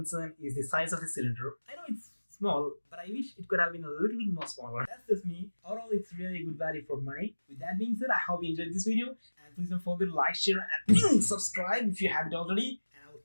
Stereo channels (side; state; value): both; inverted; correlation -1.00